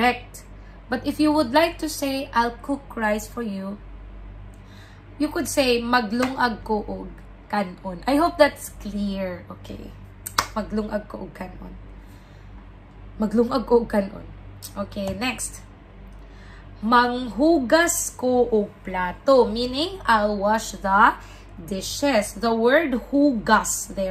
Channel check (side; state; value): both; identical; correlation 1.00